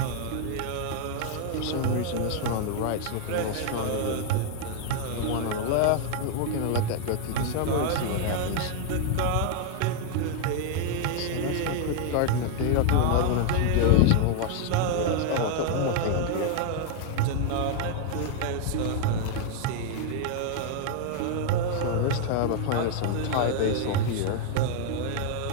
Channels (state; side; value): different; both; correlation 0.00